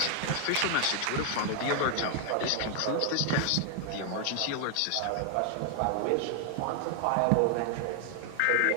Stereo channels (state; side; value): different; both; correlation 0.00